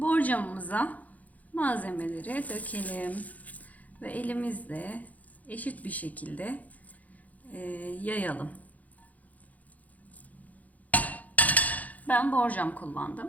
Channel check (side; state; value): right; late; 0.076 ms